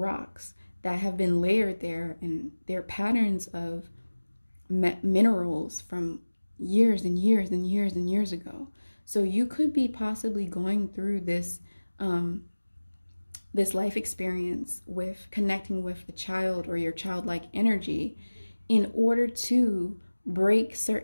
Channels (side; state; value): both; inverted; correlation -1.00